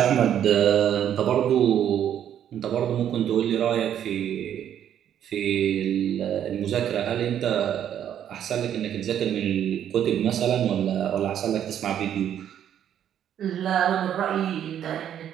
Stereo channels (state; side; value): quieter; left; 10.0 dB